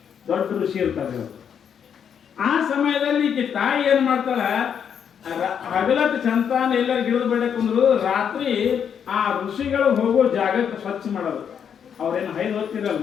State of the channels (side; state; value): right; quieter; 7.9 dB